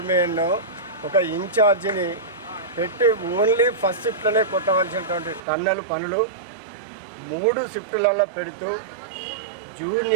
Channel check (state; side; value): drops out; left; at 5.4 s